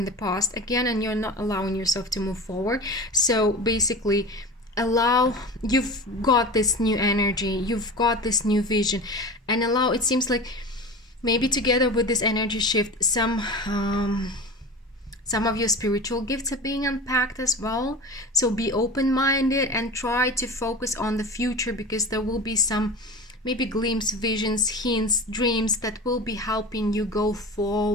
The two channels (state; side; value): normal; both; correlation 0.32